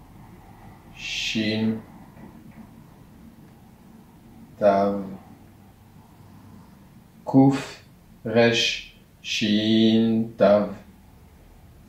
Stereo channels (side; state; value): both; identical; correlation 1.00